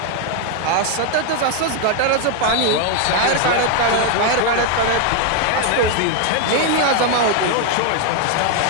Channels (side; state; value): both; different; correlation 0.01